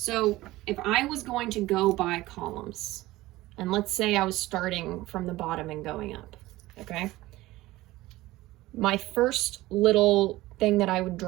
if I was going to go by columns, and let's say I was starting from the bottom and going up, okay? My first little thing that I would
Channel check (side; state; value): left; quieter; 17.9 dB